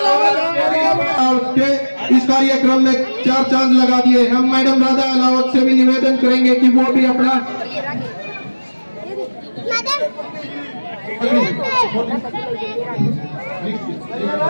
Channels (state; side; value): inverted; both; correlation -1.00